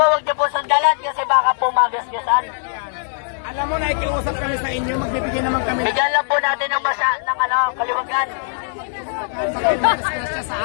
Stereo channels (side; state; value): right; silent; digital silence